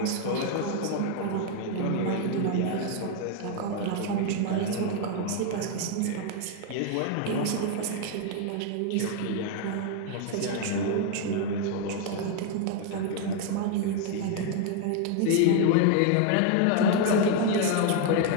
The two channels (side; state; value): both; different; correlation 0.00